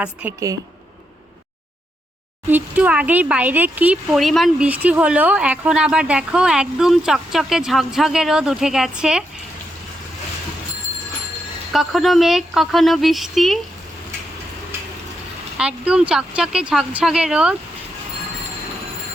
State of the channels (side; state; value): both; normal; correlation 0.82